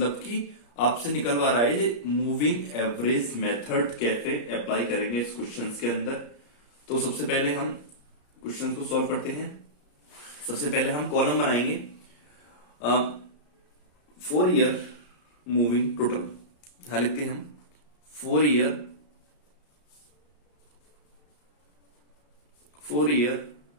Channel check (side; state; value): right; late; 34 ms